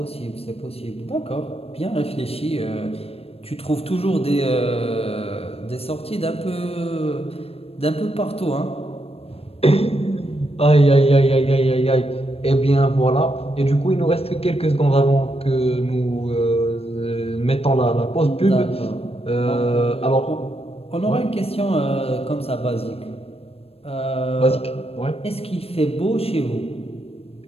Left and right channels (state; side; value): late; right; 0.28 ms